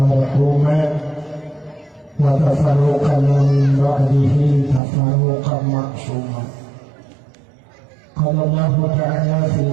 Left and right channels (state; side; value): drops out; left; at 4.8 s